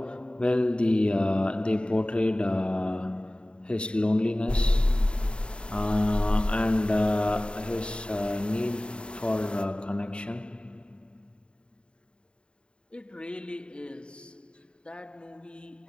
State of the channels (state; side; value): late; right; 0.053 ms